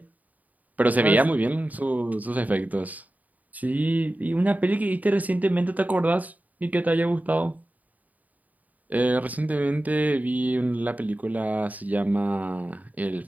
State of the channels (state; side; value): late; left; 0.076 ms